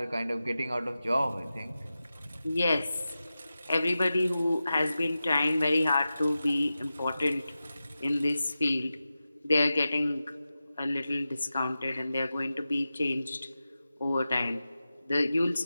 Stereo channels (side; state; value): both; inverted; correlation -0.93